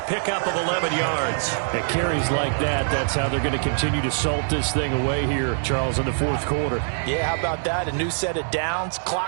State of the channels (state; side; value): silent; left; digital silence